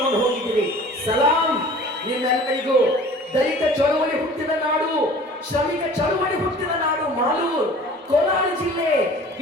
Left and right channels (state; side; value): normal; both; correlation 0.45